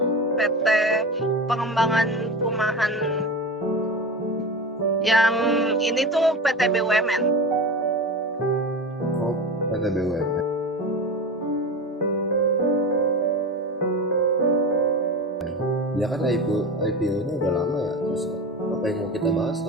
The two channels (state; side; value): normal; both; correlation 0.27